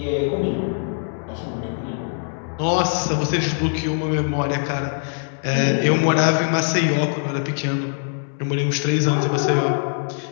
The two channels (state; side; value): silent; right; 64 dB below the other